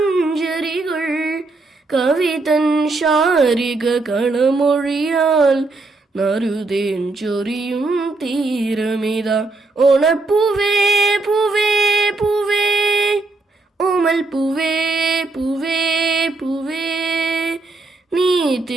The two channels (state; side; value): quieter; left; 3.4 dB